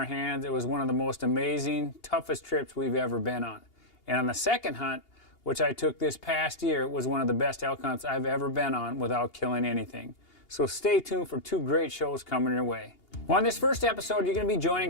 hands, it was one of the most amazing, toughest trips we've ever been on. And on the second hunt, which I took this past year, was one of the best elk hunts I've ever been on without killing anything. So stay tuned for two great shows coming your way. Well, on this first episode, you're going to be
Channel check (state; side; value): late; right; 2.8 ms